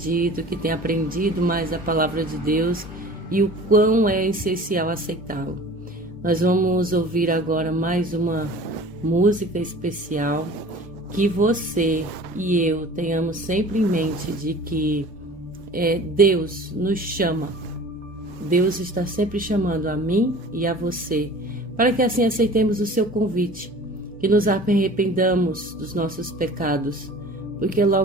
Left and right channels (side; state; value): both; normal; correlation 0.43